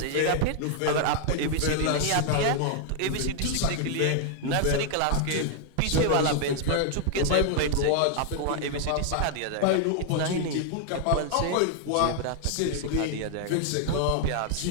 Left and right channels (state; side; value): different; both; correlation 0.00